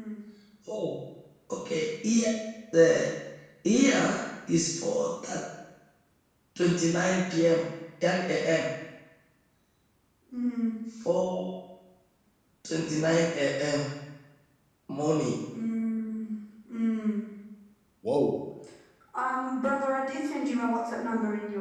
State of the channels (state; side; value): identical; both; correlation 1.00